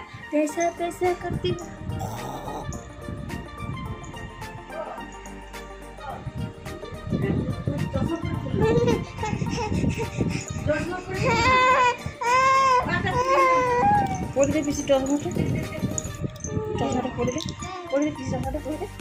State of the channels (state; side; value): identical; both; correlation 1.00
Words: তেসা তেসা করতি পড়ে দে পিসি চশমাটা পড়ে দে পিসি চশমাটা পড়ে দে